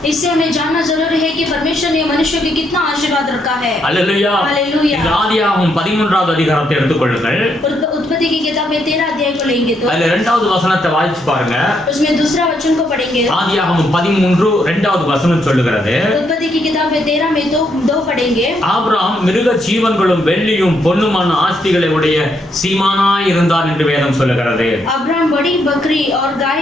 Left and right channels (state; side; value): normal; both; correlation 0.76